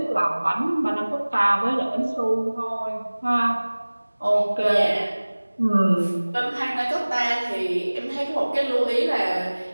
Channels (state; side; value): inverted; both; correlation -1.00